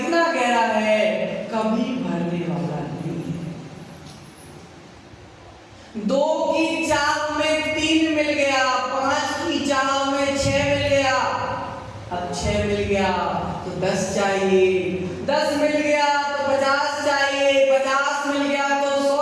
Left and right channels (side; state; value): both; identical; correlation 1.00